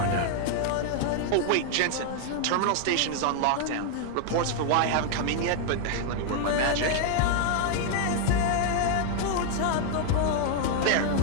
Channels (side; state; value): both; different; correlation 0.00